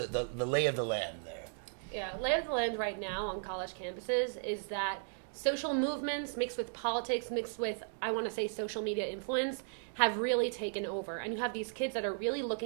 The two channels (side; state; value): left; silent; digital silence